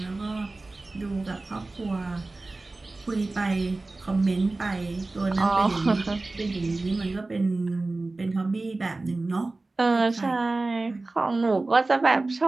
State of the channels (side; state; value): left; quieter; 3.2 dB